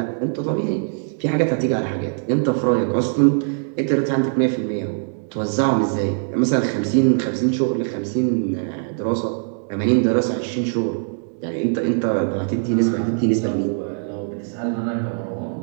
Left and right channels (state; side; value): silent; left; digital silence